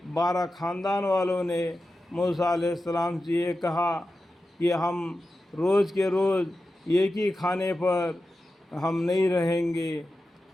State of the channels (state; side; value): normal; both; correlation 0.92